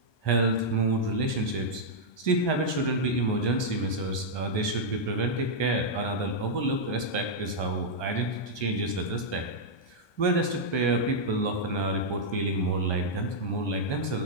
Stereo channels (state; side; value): late; right; 1.2 ms